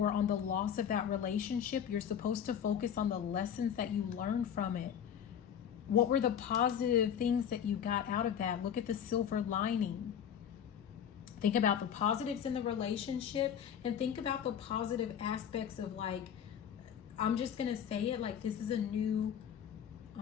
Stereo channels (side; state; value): right; quieter; 8.7 dB